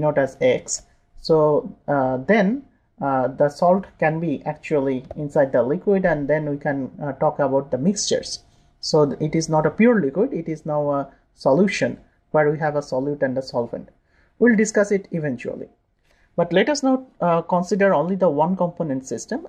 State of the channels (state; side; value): identical; both; correlation 1.00